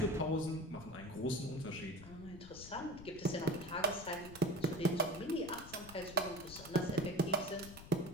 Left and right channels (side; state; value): left; noise; rumble, 15 dB below the sound